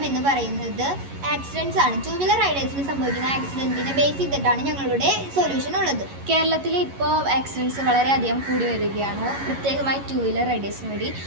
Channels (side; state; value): left; late; 11 ms